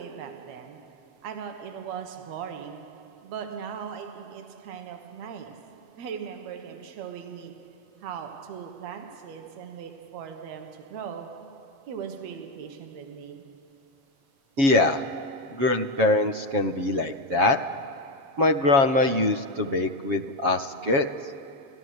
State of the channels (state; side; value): late; left; 7.3 ms